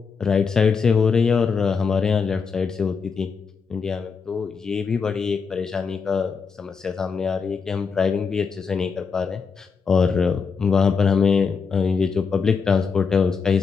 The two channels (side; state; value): right; quieter; 5.5 dB